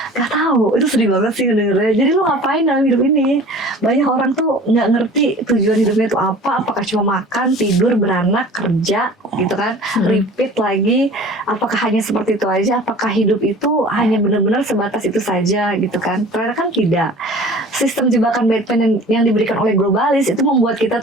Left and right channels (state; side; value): normal; both; correlation 0.43